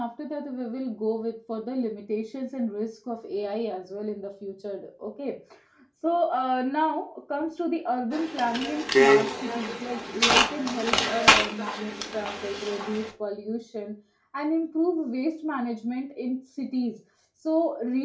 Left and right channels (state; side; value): identical; both; correlation 1.00